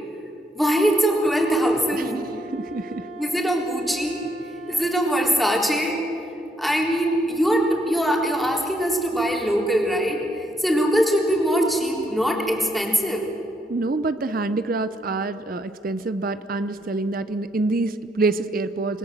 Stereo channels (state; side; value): normal; both; correlation 0.74